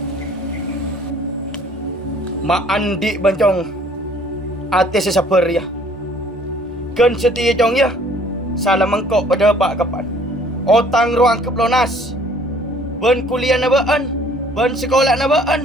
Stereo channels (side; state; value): both; normal; correlation 0.56